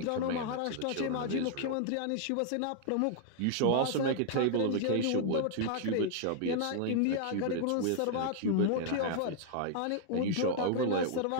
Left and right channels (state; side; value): different; both; correlation 0.00